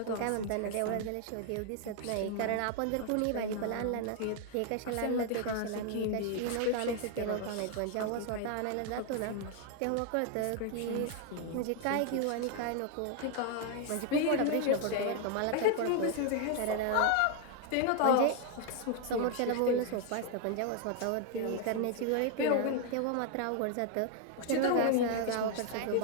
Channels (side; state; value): both; different; correlation 0.00